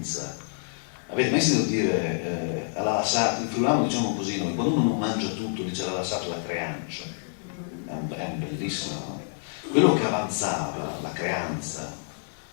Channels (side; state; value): right; silent; 58 dB below the other